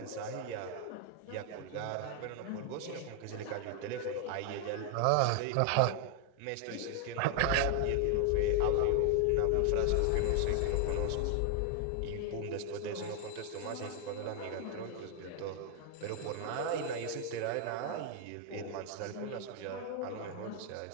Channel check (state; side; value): different; both; correlation 0.00